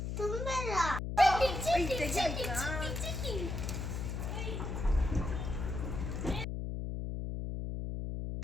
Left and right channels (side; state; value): left; noise; hum, 3 dB below the sound